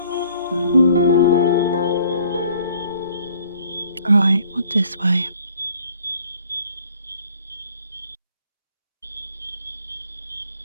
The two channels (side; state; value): both; inverted; correlation -0.58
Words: Right, what this way?